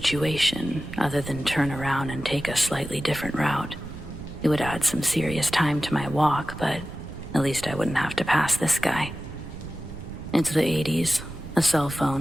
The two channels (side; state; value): right; noise; rumble, 11 dB below the sound